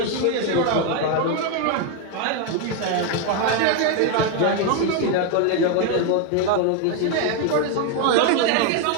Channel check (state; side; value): different; both; correlation 0.01